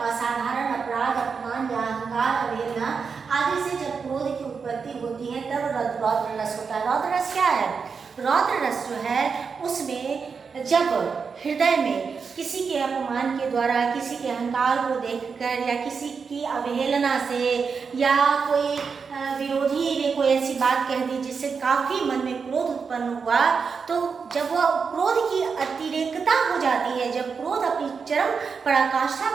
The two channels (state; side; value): quieter; left; 5.6 dB